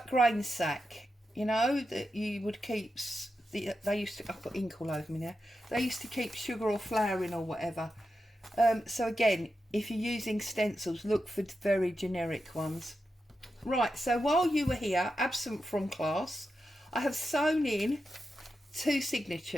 grain sack, you know, that you would keep, they used to, I've got ink all over me now. They used to keep sugar or flour in or whatever. So again, if you're using stencils, look for very generic ones. Right, so while you were here, absent from class, I have sewn in 2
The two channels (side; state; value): both; normal; correlation 0.89